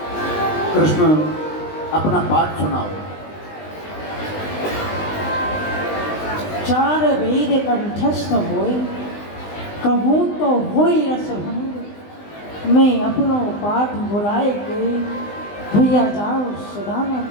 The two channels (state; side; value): late; right; 20 ms